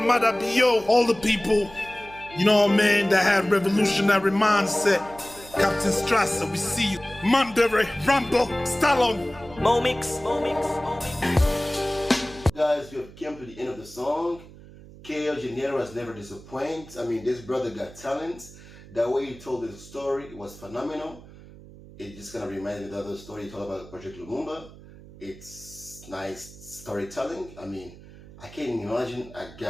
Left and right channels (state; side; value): noise; right; hum, 19 dB below the sound